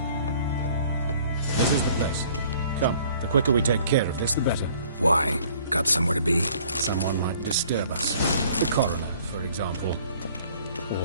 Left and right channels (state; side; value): inverted; both; correlation -0.56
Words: This is the place. Come, the quicker we take care of this, the better. Why? Got somewhere to be? Someone might disturb us. The coroner, for example.